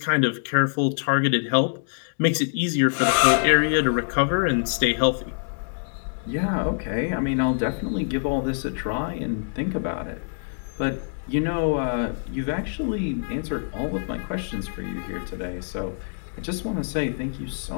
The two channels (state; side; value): silent; right; digital silence